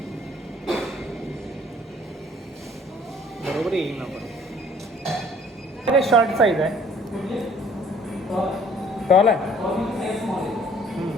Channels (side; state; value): both; normal; correlation 0.57